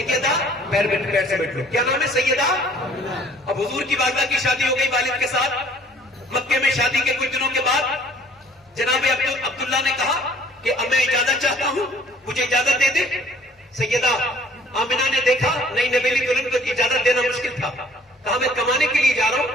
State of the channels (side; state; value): both; normal; correlation 0.56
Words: پیر سے بیٹھ لو. کیا نام ہے؟ سیدہ. اب حضور کی والدہ کی شادی ہو گئی والد کے ساتھ. مکے میں شادی کے کچھ دنوں کے بعد جناب عبداللہ نے کہا کہ اب میں اجازت چاہتا ہوں, مجھے اجازت دے دے. سیدہ آمنہ نے دیکھا نئی نویلی دلہن کو اجازت دینا مشکل تھا, کہا میں کمانے کے لیے جا رہا